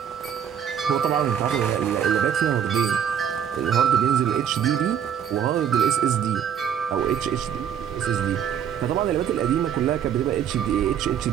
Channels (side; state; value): left; quieter; 8.8 dB